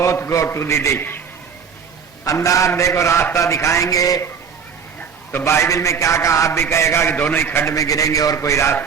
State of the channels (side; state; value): left; quieter; 6.6 dB